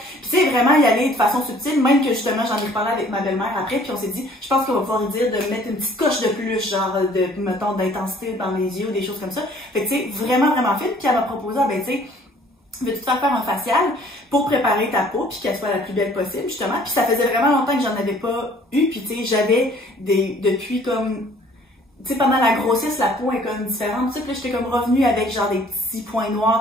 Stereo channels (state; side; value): normal; both; correlation 0.56